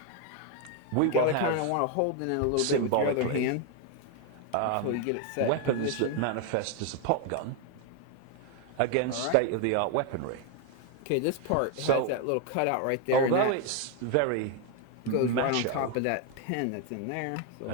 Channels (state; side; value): different; both; correlation 0.01